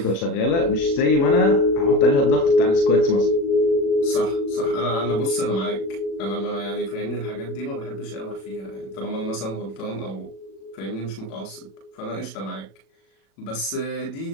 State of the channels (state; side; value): late; right; 36 ms